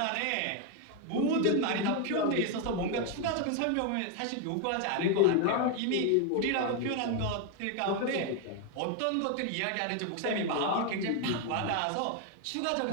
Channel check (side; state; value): both; different; correlation 0.01